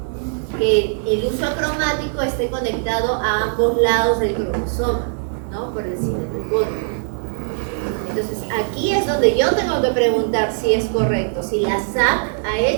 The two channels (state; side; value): silent; left; digital silence